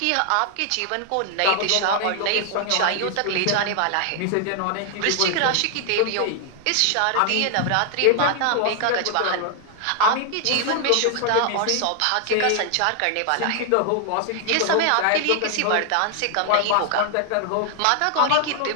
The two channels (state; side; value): different; both; correlation 0.00